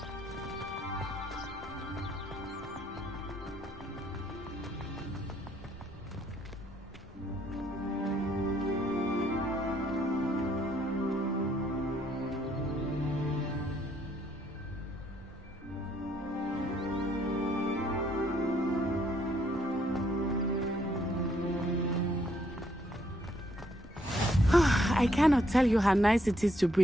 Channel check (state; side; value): normal; both; correlation 0.70